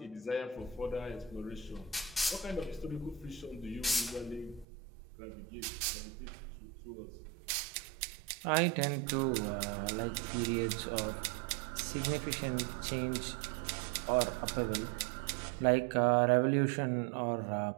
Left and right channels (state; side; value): drops out; left; at 4.7 s